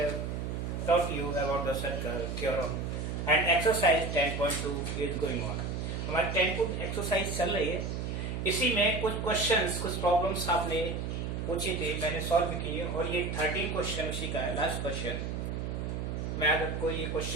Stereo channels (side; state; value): right; noise; hum, 3 dB below the sound